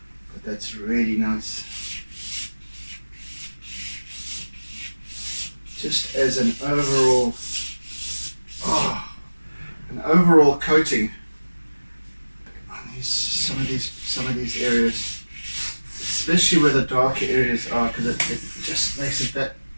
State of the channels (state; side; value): inverted; both; correlation -1.00